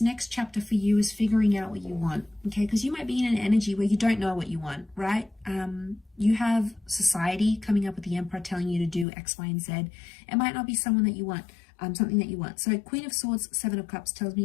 next chapter for you is figuring out what you want, okay? Because you might be in an energy where you don't know what you want, right? You have society coming up with the Emperor telling you to do X, Y, and Z. It might not be someone that you want, something that you want. So Queen of Swords, Seven of Cups tells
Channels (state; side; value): drops out; right; at 9.1 s